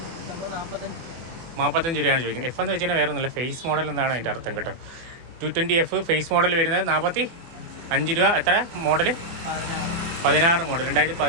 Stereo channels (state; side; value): late; left; 24 ms